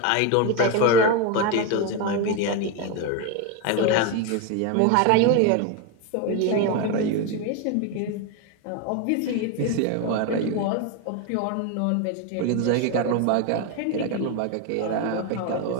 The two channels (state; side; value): different; both; correlation 0.02